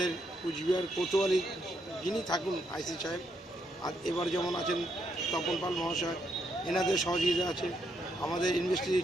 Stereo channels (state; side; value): normal; both; correlation 0.77